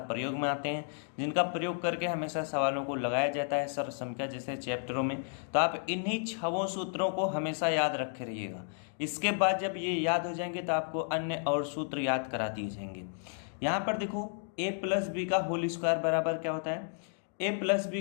प्रयोग में आते हैं, जिनका प्रयोग करके हमेशा सवालों को लगाया जाता है सर्व संख्या जैसे चैप्टरों में। तो आप इन्हीं 6 सूत्रों को हमेशा याद रखे रहिएगा। इसके बाद जब ये याद हो जाएंगे तो आपको अन्य और सूत्र याद करा दिए जाएंगे। यहाँ पर देखो, ए प्लस बी का होल स्क्वायर बराबर क्या होता है? ए प्लस बी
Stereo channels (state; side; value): silent; right; digital silence